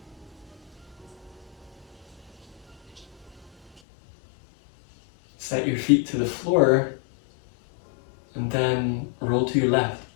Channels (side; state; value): right; drops out; at 3.8 s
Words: Set your feet to the floor and then roll to your left.